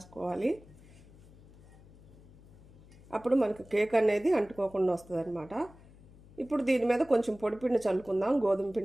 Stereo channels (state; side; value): noise; left; hum, 23 dB below the sound